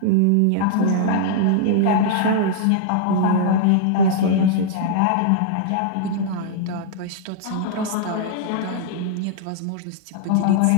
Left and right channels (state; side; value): different; both; correlation -0.01